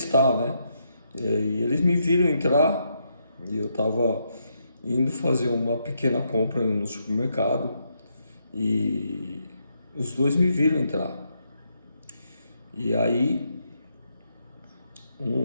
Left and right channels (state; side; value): inverted; both; correlation -0.79